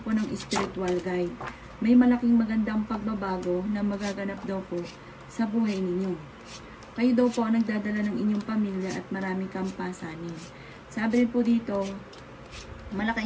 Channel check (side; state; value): both; identical; correlation 1.00